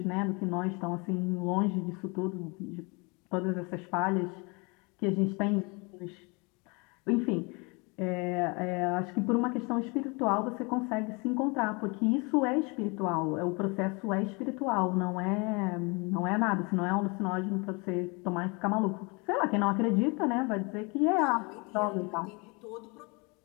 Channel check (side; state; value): right; quieter; 29.6 dB